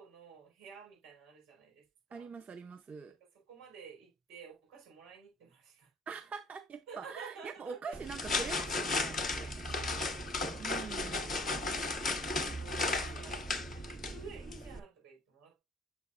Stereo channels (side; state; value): both; normal; correlation 0.54